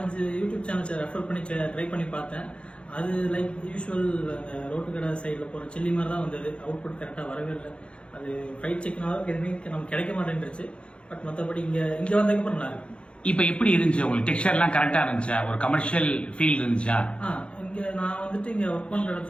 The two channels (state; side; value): late; right; 0.058 ms